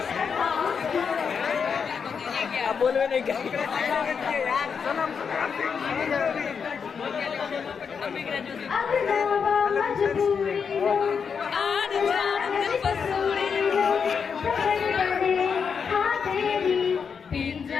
अब बोलवे नहीं क्या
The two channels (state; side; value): quieter; right; 6.3 dB